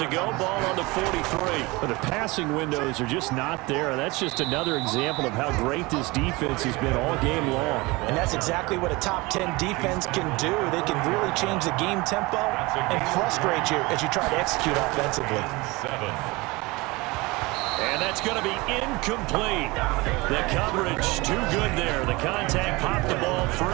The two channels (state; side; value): quieter; left; 23.4 dB